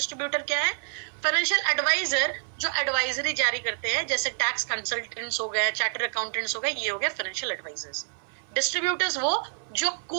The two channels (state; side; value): silent; left; 60 dB below the other